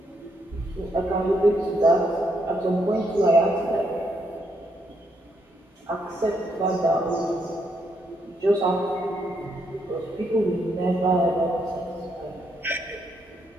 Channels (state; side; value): normal; both; correlation 0.76